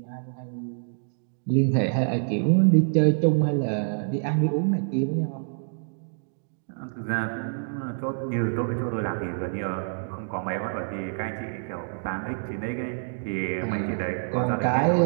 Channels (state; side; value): silent; left; digital silence